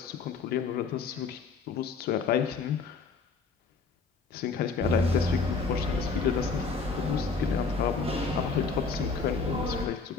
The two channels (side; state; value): right; quieter; 4.8 dB